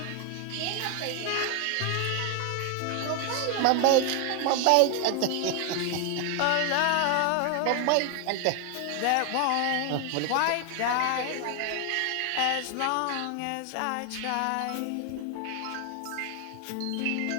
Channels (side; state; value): both; different; correlation 0.00